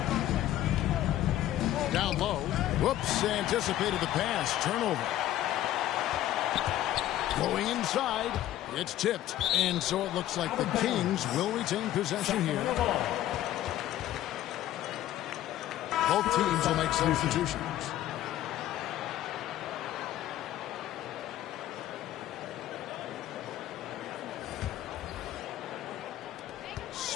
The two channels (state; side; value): quieter; right; 13.3 dB